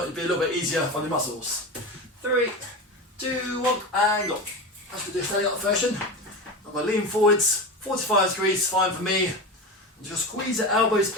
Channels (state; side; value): normal; both; correlation 0.24